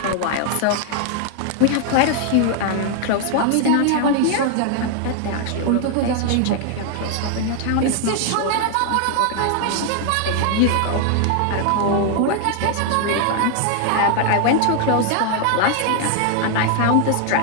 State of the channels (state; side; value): different; both; correlation 0.00